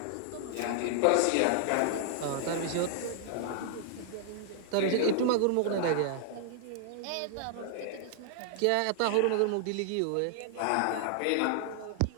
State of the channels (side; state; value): both; different; correlation -0.01